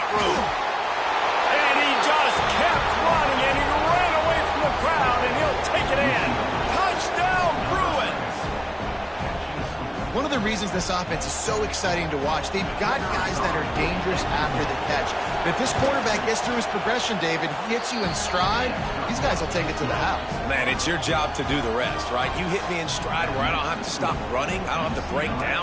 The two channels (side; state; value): both; identical; correlation 1.00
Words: room. And he just kept running, and he ran away from the crowd, and he'll take it in. Touchdown, Bruins! One of the reasons this offense is so exciting to watch, they've got guys that are dangerous after the catch. But if this quarterback gets through his progression, David, he hits you in stride, these guys will take it to the house. Man, it's your job to do the rest, right? You hit me in stride where I don't have to stop running. I don't have to break